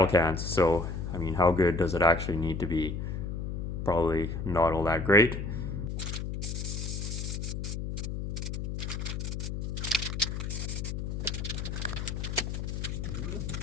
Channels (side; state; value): left; noise; hum, 4 dB below the sound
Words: cans. So, I mean, how good does it actually need to be? Probably not all that great.